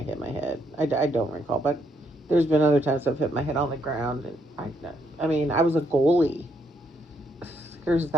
hit my head. I don't recall, but there's been other times I've hit my head on the ground, and I mean, I was a goalie. There's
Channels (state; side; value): normal; both; correlation 0.74